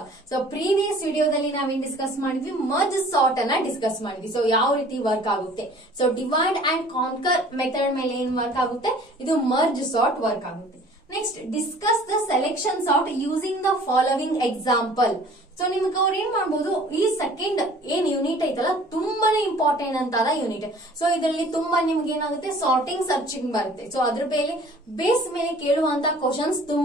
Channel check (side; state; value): both; normal; correlation 0.50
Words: So previous ವಿಡಿಯೋದಲ್ಲಿ ನಾವೇನ್ ಡಿಸ್ಕಸ್ ಮಾಡಿದ್ವಿ, ಮರ್ಜ್ ಸಾರ್ಟ್ ಅನ್ನ ಡಿಸ್ಕಸ್ ಮಾಡಿದ್ವಿ. ಸೊ ಯಾವ ರೀತಿ ವರ್ಕ್ ಆಗುತ್ತೆ. So divide and conquer method ಮೇಲೆ ಏನ್ ವರ್ಕ್ ಆಗುತ್ತೆ, ಇದು ಮರ್ಜ್ ಸಾರ್ಟ್ ವರ್ಕ್ ಆಗುತ್ತೆ. Next discuss the selection sort using the following example. So ನಿಮ್ಗೆ ಅವ್ರು ಏನ್ ಮಾಡ್ಬೋದು, ಈ ಸೆಕೆಂಡ್ ಏನ್ ಯೂನಿಟ್ ಐತಲ್ಲ ತುಂಬಾನೇ ಇಂಪಾರ್ಟೆಂಟ್ ಅಂತ ಯೂನಿಟ್. ಸೊ ಇದರಲ್ಲಿ ತುಂಬಾ ನಿಮ್ಗೆ ಏನಾಗುತ್ತೆ, ಸಾರ್ಟಿಂಗ್ ಸರ್ಚಿಂಗ್ ಬರುತ್ತೆ. ಸೊ ಅದ್ರ ಬೇಸ್ ಮೇಲೆ ಕೇಳುವಂತ ಕ್ವಶನ್ಸ್